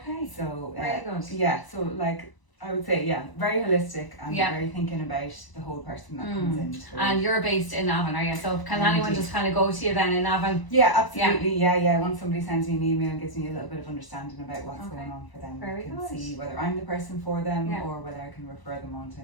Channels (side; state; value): right; late; 1.1 ms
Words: So very good. Yeah, so like I would say, very holistic and very thinking about the whole person that comes in. And you're based in Navan, are you? So can anyone just kind of go to you then in Navan? Yeah, absolutely. Yeah. Once somebody sends me an email and gives me a little bit of understanding about what's going on for them, I can see whether I'm the person for them or whether I can refer them on to